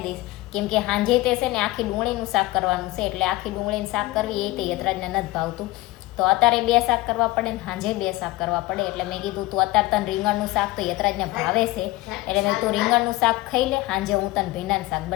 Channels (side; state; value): right; quieter; 18.8 dB